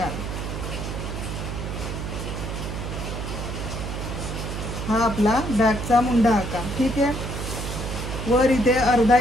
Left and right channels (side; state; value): right; noise; hum, 5 dB below the sound